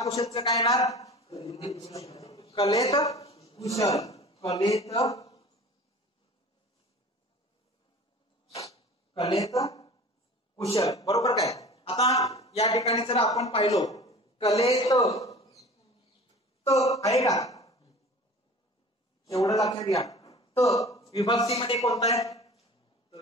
कुशलचं काय येणार, कलेत कुशल, कलेत कुशल. बरोबर काय. आता या ठिकाणी जर आपण पाहिलो कलेत त आहे का, एवढं लक्षात घ्या. त विभक्तीमध्ये कोणता आहे,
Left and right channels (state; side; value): normal; both; correlation 0.41